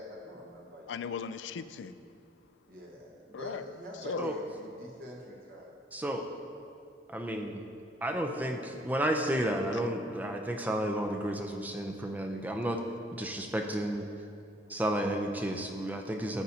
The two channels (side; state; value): both; normal; correlation 0.62